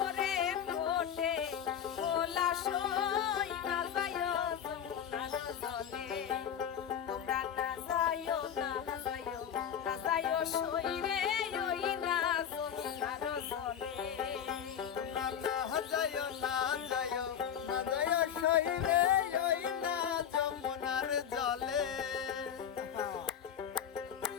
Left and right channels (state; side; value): quieter; right; 8.8 dB